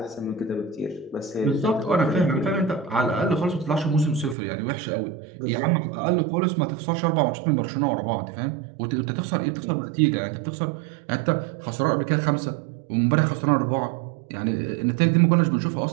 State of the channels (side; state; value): left; drops out; at 4.4 s